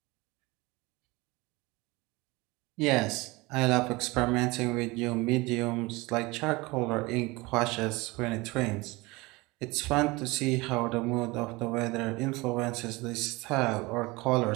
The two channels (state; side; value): quieter; left; 23.2 dB